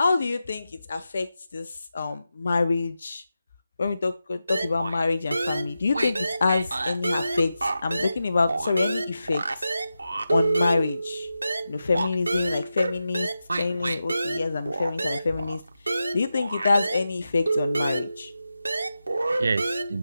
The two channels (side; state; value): both; inverted; correlation -0.91